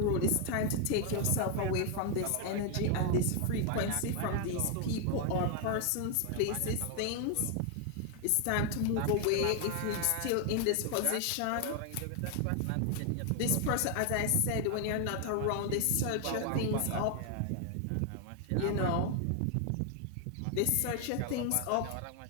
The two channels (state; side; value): different; both; correlation 0.00